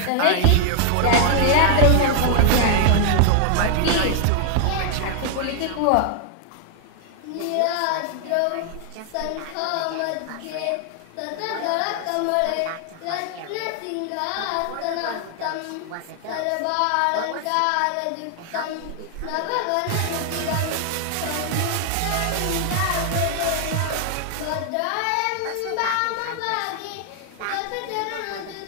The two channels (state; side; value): different; both; correlation 0.00